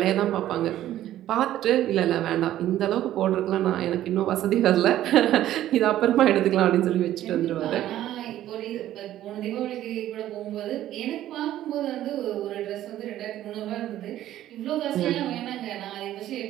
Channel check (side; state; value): left; quieter; 13.0 dB